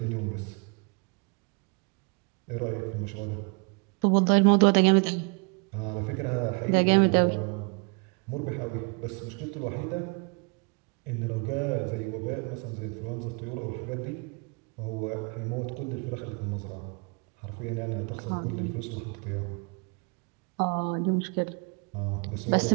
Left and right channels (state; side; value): quieter; left; 32.8 dB